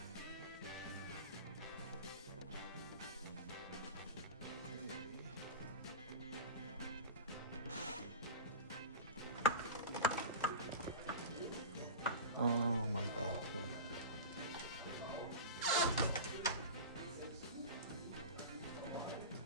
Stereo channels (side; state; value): both; inverted; correlation -0.31